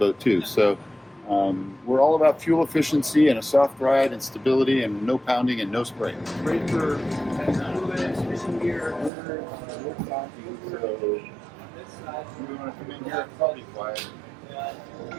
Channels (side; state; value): left; drops out; at 9.1 s